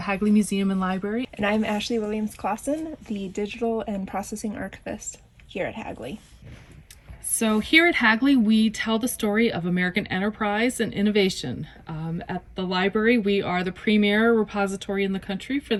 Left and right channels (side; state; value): both; identical; correlation 1.00